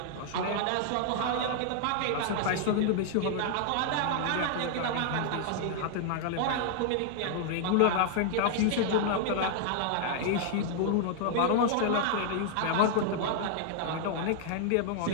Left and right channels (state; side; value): different; both; correlation -0.01